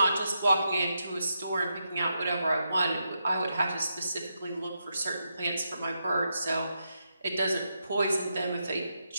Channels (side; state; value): both; inverted; correlation -0.83